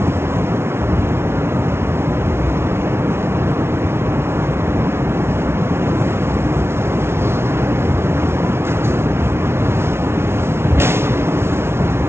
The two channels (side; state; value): left; late; 0.12 ms